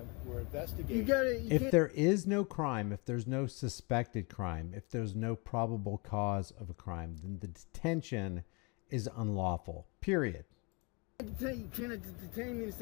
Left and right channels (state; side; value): quieter; right; 30.4 dB